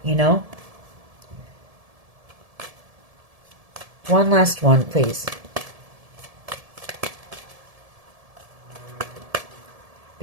you know? One last one, please.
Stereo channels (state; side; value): late; left; 1.7 ms